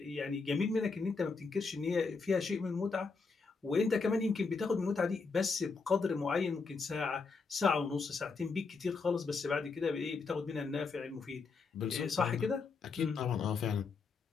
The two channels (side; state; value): right; quieter; 4.6 dB